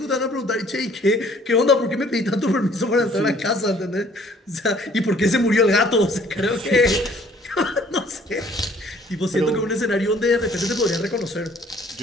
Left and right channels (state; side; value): normal; both; correlation 0.58